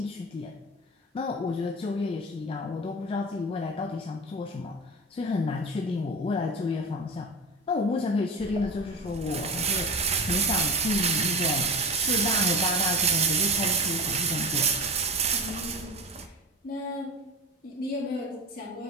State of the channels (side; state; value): both; normal; correlation 0.28